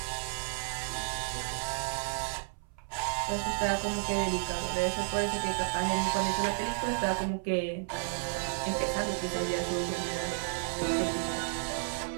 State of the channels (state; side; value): silent; left; 56 dB below the other